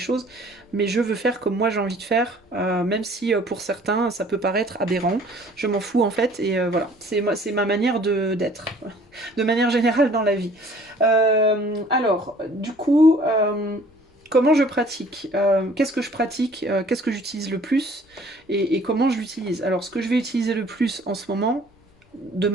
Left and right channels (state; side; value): normal; both; correlation 0.54